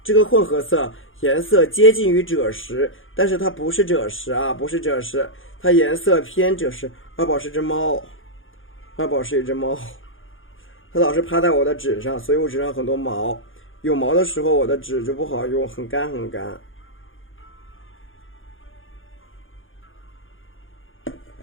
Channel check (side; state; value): right; late; 0.58 ms